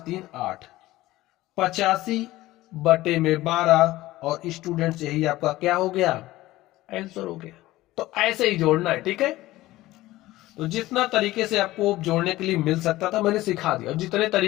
3 8, 85 बटे में 12। और स्टूडेंट्स यही आपका क्या हो गया, आंसर हो गया। तो ऐसे ही जोड़ना है। ठीक है, तो जितना तरीके से आपको जोड़ने के लिए मिल सकता था मैंने सिखा दिया, जितने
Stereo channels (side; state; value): right; quieter; 17.1 dB